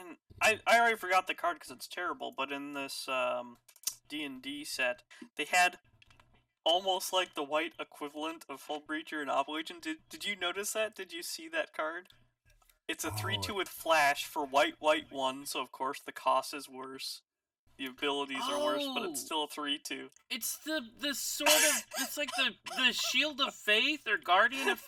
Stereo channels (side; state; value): both; identical; correlation 1.00